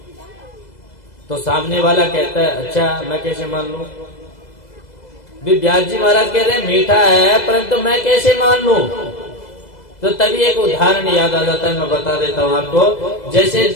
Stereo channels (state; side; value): late; right; 2.0 ms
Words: तो सामने वाला कहता है अच्छा मैं कैसे मान लूं? भी व्यास जी महाराज कह रहे हैं मीठा है, परंतु मैं कैसे मान लूं? तो तभी एक उदाहरण याद आ जाता है, मैं बता देता हूं आपको। जैसे